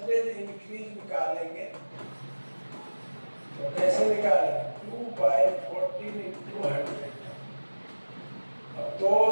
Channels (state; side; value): inverted; both; correlation -1.00